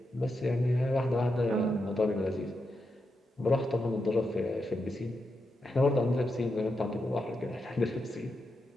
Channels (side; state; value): both; normal; correlation 0.85